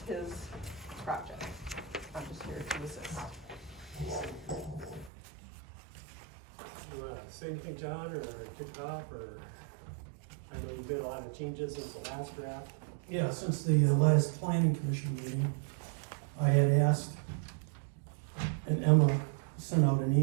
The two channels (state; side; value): drops out; left; at 5.1 s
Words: his project. I'm just here to assist. You wanna say anything, John, or kick it off, or I know you've made a lot of changes since the last draft. Yeah, since the last planning commission meeting, I had asked, and Emma sent out an